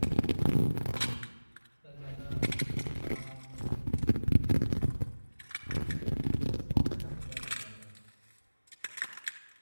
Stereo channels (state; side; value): inverted; both; correlation -1.00